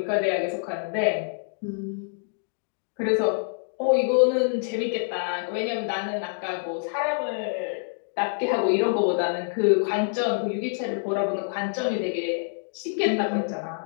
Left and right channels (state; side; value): silent; right; digital silence